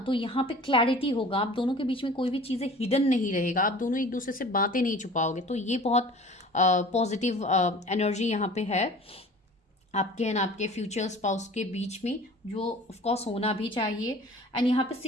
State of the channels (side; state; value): both; normal; correlation 0.44